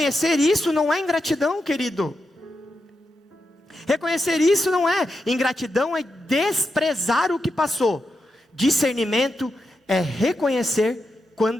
isso não é ingratidão, querido. Reconhecer isso não é ingratidão, é desprezar o que passou. Discernimento é reconhecer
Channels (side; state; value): both; normal; correlation 0.86